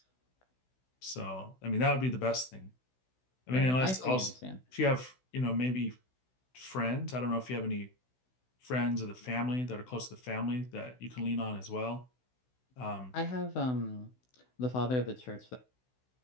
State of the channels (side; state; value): right; late; 16 ms